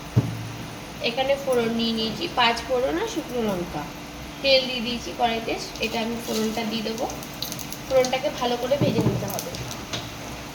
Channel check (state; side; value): identical; both; correlation 1.00